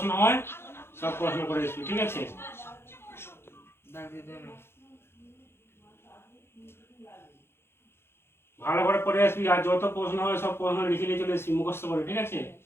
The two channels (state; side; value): late; right; 0.12 ms